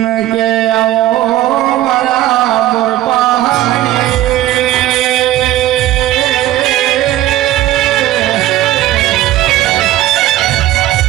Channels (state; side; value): quieter; left; 14.5 dB